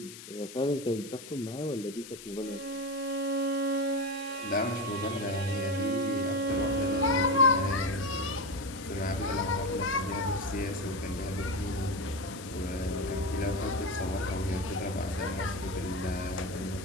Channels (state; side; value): noise; left; hiss, 14 dB below the sound